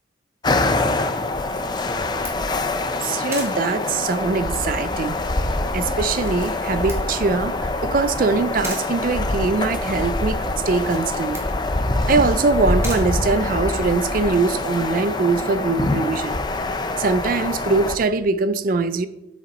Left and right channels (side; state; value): both; normal; correlation 0.34